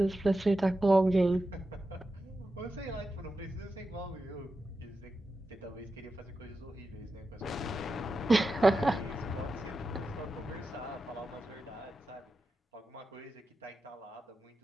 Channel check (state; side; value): normal; both; correlation 0.91